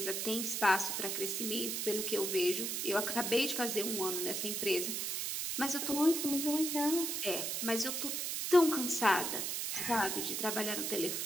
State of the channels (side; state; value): right; noise; hiss, 1 dB below the sound